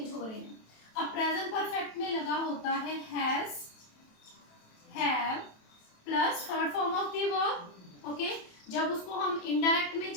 हो रहे हैं। अब प्रेजेंट परफेक्ट में लगा होता है has, have plus third form of the verb. Okay, जब उसको हम इनडायरेक्ट में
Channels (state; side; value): late; right; 27 ms